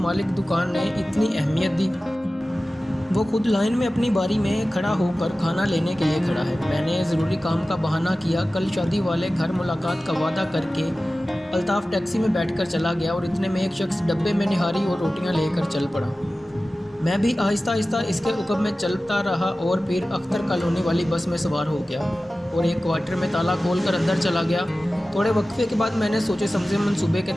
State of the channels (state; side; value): normal; both; correlation 0.96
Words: دکان نے اتنی اہمیت دی؟ وہ خود لائن میں اپنی باری میں کھڑا ہو کر کھانا لینے کے لیے کھڑا ہے۔ میں نے ضروری کام کا بہانہ کیا، کل شادی والے گھر ملاقات کا وعدہ کر کے الطاف ٹیکسی میں بیٹھ کر چلا گیا، اور اتنے میں ایک شخص ڈبے میں نہاری اور روٹیاں لے کر چل پڑا۔ میں بھی آہستہ آہستہ اس کے عقب میں چلتا رہا اور پھر اختر کالونی والی بس میں سوار ہو گیا اور ایک کوارٹر میں تالا کھول کر اندر چلا گیا۔ تھوڑے وقفے کے بعد میں نے سوچے سمجھے منصوبے کے